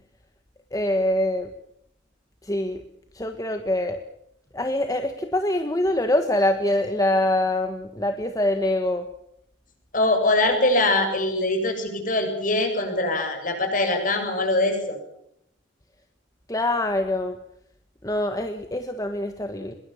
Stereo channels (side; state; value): both; normal; correlation 0.31